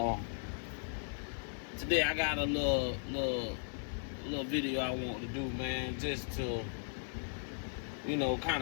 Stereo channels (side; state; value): right; silent; 53 dB below the other